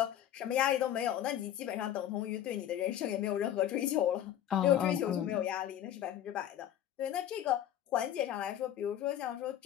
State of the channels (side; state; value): right; quieter; 11.1 dB